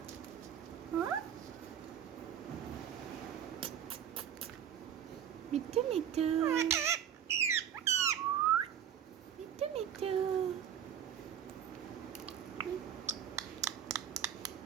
हाँ मिट्टू मिट्टू मिट्टू मिट्टू।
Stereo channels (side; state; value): left; quieter; 9.2 dB